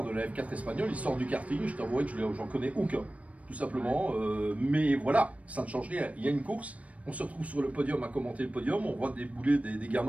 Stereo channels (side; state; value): left; late; 0.066 ms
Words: de la F4 espagnole, ils sortent du karting, je t'avouerai que j'en connais aucun, tout simplement. Mais voilà, ça ne change rien. Il y a une course, on se retrouve sur le podium à commenter le podium, on voit débouler des